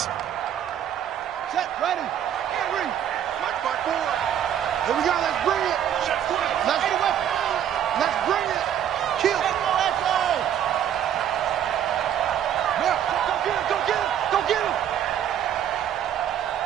Set, ready. Mike 5-4. Here we go. Let's bring it. Let's bring it. Kill. Go get him.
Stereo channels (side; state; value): left; quieter; 10.0 dB